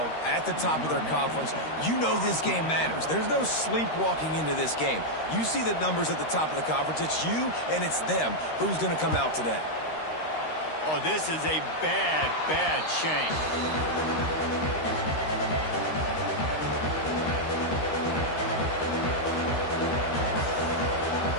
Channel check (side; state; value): right; late; 13 ms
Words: at the top of their conference. You know this game matters. There's no sleepwalking into this game. You see the numbers at the top of the conference. It's you and it's them. Who's going to come out today? Oh, this is a bad, bad shame.